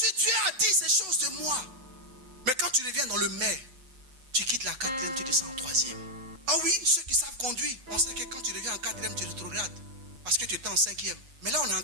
Dieu a dit ces choses de moi, mais quand tu reviens dans le mais, tu quittes la quatrième, tu descends en troisième. Ah oui, ceux qui savent conduire, on sait que quand tu reviens en quatrième, tu rétrogrades. Parce que tu étais en cinquième. Mais là, on est en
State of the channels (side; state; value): left; late; 7.8 ms